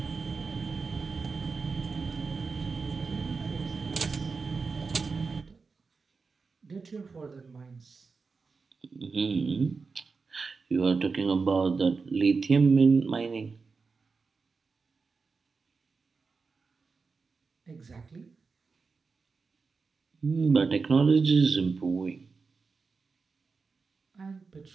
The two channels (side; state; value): left; quieter; 4.6 dB